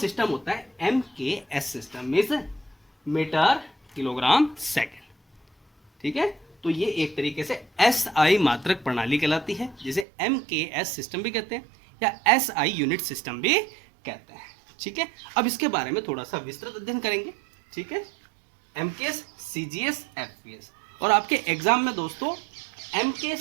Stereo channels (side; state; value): left; drops out; at 10.1 s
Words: होता है MKS system, means metre kilogram second, ठीक है। तो ये एक तरीके से SI मात्रक प्रणाली कहलाती है, जिसे MKS सिस्टम भी कहते हैं या SI यूनिट सिस्टम भी कहते हैं, ठीक है। अब इसके बारे में थोड़ा सा विस्तृत अध्ययन करेंगे, ठीक है। MKS, CGS, FPS। और आपके एग्जाम में दोस्तों